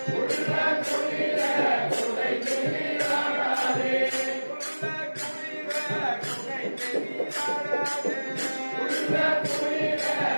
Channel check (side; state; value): both; inverted; correlation -1.00